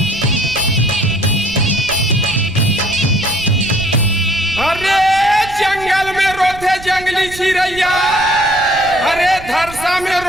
जंगली चिड़ैया, अरे धरसा में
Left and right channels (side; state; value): right; noise; rumble, 15 dB below the sound